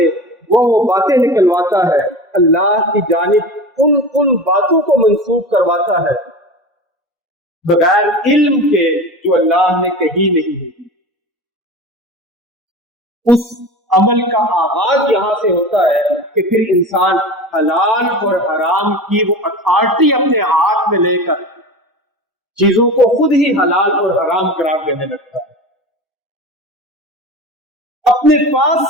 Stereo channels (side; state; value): both; normal; correlation 0.31